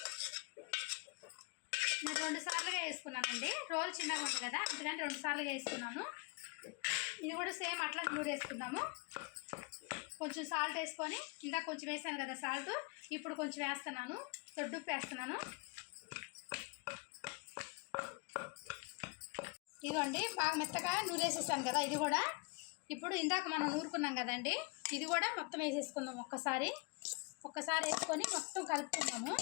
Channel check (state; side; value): quieter; right; 30.3 dB